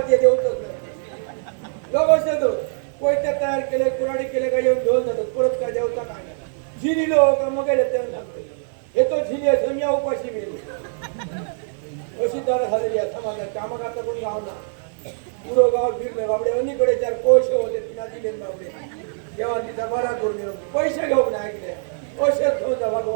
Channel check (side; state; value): left; silent; 64 dB below the other